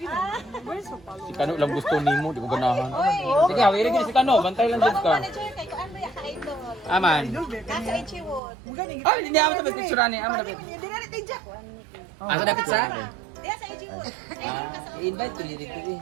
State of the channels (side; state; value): left; drops out; at 8.4 s